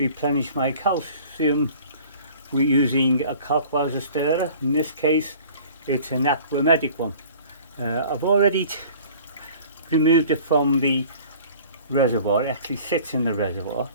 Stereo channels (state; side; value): inverted; both; correlation -0.48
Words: my calcium. We're using a Kalkwasser stirrer. In this case it's an Aqua Medic one. I've already removed it from the reservoir. It actually sits in the reservoir,